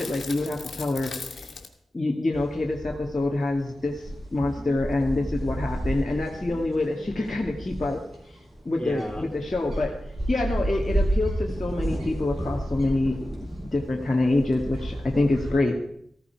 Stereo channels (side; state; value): both; normal; correlation 0.94